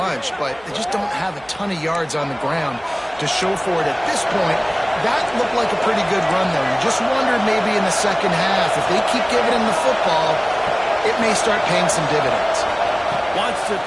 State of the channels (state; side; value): noise; right; hum, 28 dB below the sound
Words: but they just don't have a ton of yards on the ground to show for it at this point. That looked like a pretty good run, though. You just wondered maybe in the second half, if they keep giving him the football, it may start paying some dividends. Wants to